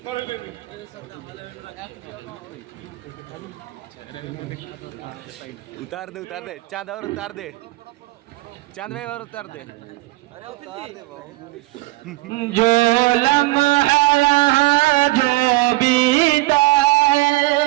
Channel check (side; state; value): left; quieter; 20.9 dB